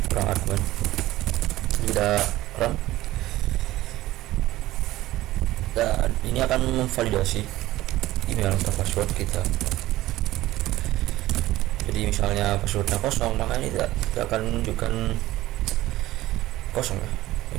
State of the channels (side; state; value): left; quieter; 16.3 dB